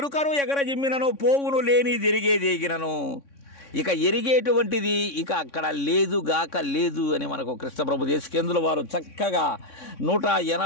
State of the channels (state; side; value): late; right; 3.6 ms